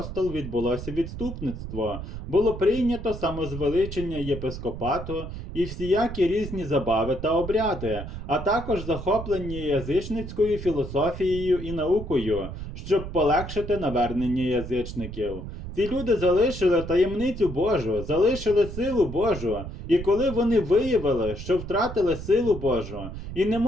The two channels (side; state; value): right; noise; rumble, 9 dB below the sound